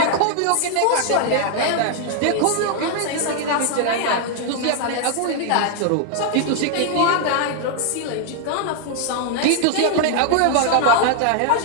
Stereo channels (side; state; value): both; different; correlation 0.00